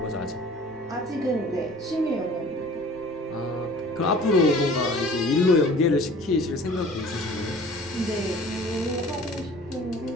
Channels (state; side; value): noise; right; rumble, 24 dB below the sound